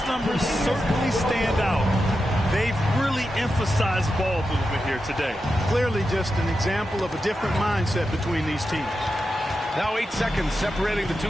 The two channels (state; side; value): normal; both; correlation 0.89